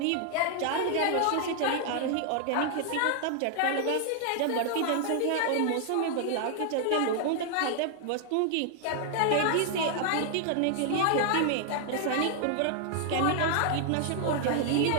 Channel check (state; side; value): different; both; correlation 0.00